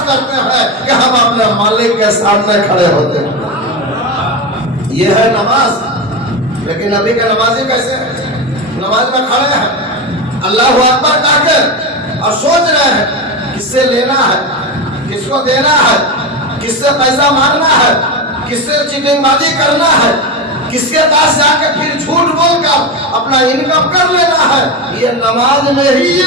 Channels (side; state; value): both; normal; correlation 0.18